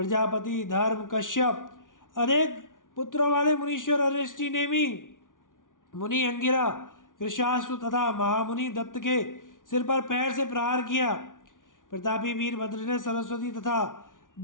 धर्म कश्यप, अनेक पुत्रों वाले मुनीश्वर अरिष्टि नेमी, मुनि अंगिरा, कृशाश्व तथा महामुनि दत्त के सिर पर पैर से प्रहार किया। प्रतापी वीरभद्र ने सरस्वती तथा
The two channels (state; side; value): late; right; 0.88 ms